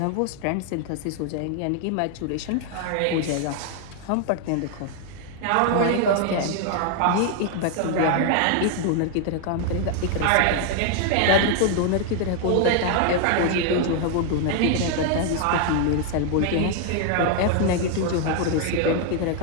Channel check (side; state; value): both; different; correlation 0.00